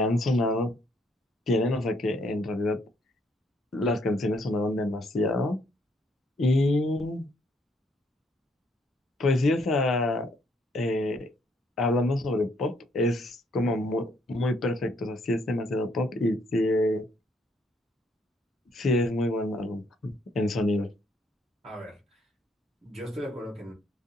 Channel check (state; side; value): normal; both; correlation 0.69